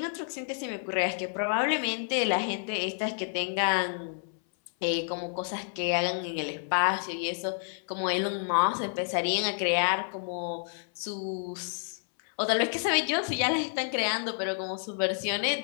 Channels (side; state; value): right; silent; 58 dB below the other